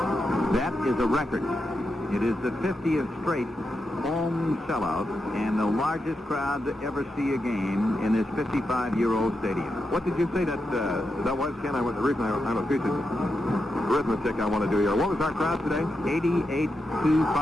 That is a record. It is the 50th straight home sellout and the largest crowd to ever see a game in this 55-year-old stadium. What did you say that was, Ken? The reason I'm a piece of arithmetic I want to do here. What was our crowd today?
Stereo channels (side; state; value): both; normal; correlation 0.86